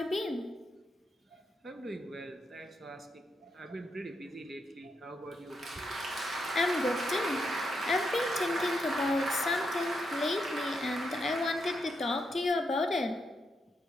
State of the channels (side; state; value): both; normal; correlation 0.82